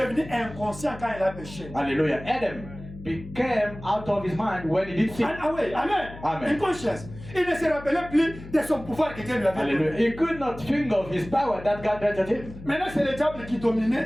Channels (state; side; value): noise; left; hum, 15 dB below the sound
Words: inconscient quand il a péché. Hallelujah. Adam became out of his mind when he did sin. And away, amen. Amen. Inconscience. Il ne se rappelait plus de son pouvoir que Dieu lui avait Hallelujah. donné. He could not think of his power that God granted him. Maintenant, c'est le diable qui dominait